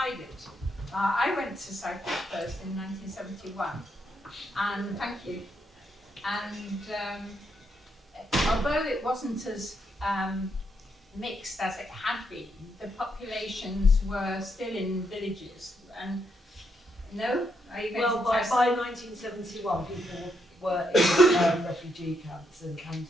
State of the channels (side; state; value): both; normal; correlation 0.78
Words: I went to Cyprus first in 1971, and thank you. And although it wasn't as mixed as it had been, the populations were still in villages. And no, are you going Well, to by test? 1971, people were in refugee camps and